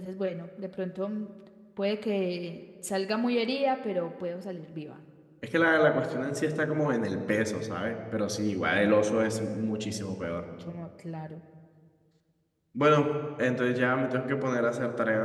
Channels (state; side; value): identical; both; correlation 1.00